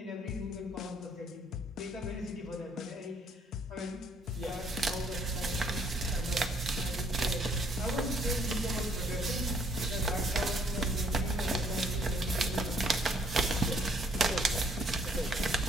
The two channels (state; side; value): normal; both; correlation 0.66